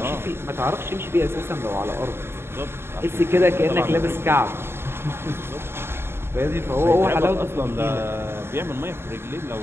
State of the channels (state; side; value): late; left; 0.11 ms